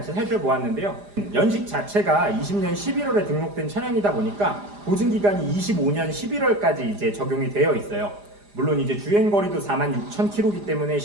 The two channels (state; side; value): late; left; 4.9 ms